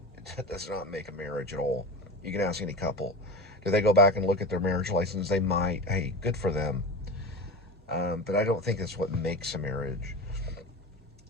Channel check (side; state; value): both; normal; correlation 0.28